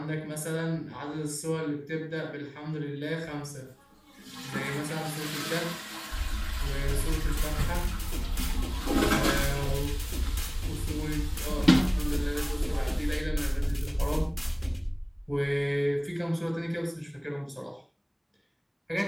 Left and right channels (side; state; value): both; identical; correlation 1.00